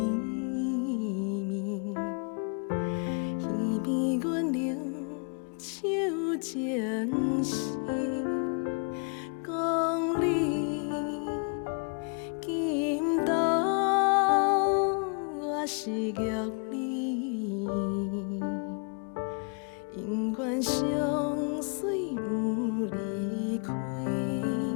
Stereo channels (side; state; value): right; quieter; 39.5 dB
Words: 耳边阮流手情丝，讲你今朝我是玉你。永远相随不离开。